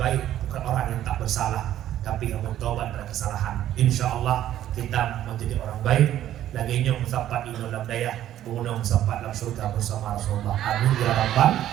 bukan orang yang tak bersalah, tapi yang bertobat dari kesalahan. Insya Allah kita menjadi orang baik. Lagi nyong sampai di dalam daya, mengunang sampai dalam surga bersama Rasulullah. Amin ya rabbal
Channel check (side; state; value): left; quieter; 12.2 dB